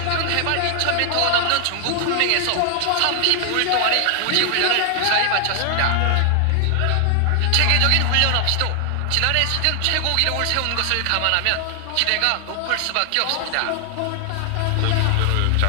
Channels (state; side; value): different; both; correlation 0.00